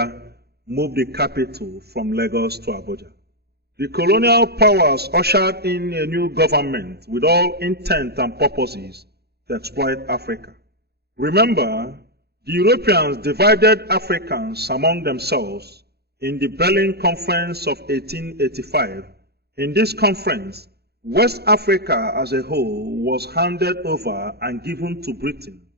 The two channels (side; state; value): left; late; 0.47 ms